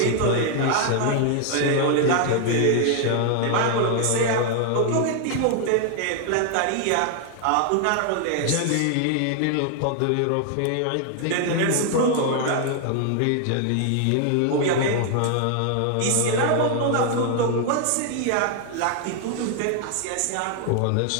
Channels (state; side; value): different; both; correlation 0.00